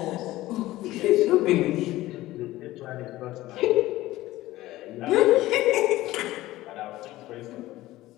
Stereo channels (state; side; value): quieter; right; 16.7 dB